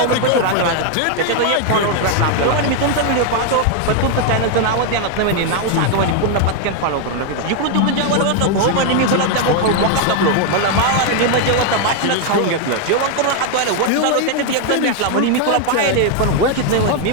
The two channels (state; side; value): different; both; correlation 0.01